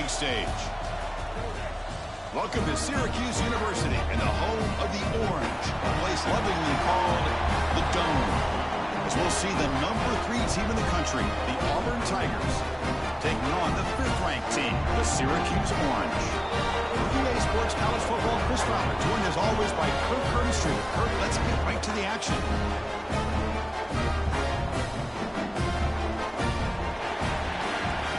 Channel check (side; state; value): both; identical; correlation 1.00